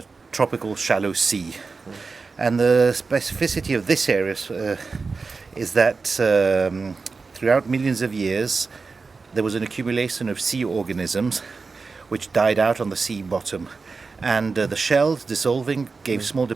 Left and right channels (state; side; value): quieter; left; 4.4 dB